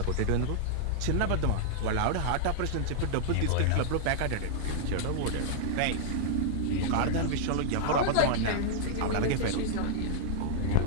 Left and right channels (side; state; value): both; different; correlation -0.01